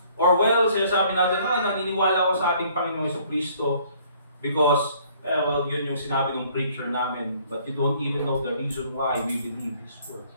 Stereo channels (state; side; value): inverted; both; correlation -0.59